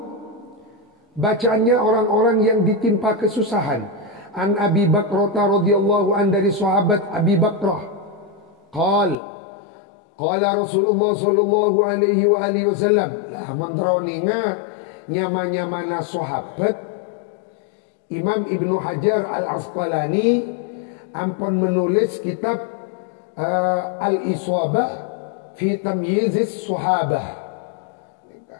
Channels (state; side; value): drops out; right; at 9.2 s